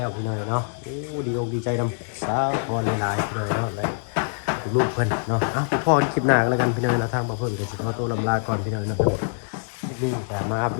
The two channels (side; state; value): right; silent; digital silence